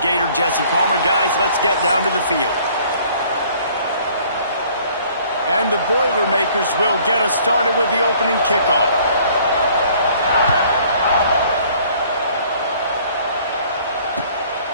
Jesse Palmer. Guys, let's get down to the field. And the Boilermakers will get us started with the opening kickoff.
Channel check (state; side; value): inverted; both; correlation -0.57